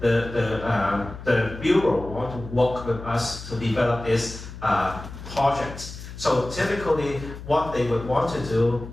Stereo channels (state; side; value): noise; left; hum, 12 dB below the sound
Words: the Bureau want to work with us to develop this project. So typically, what they would want to do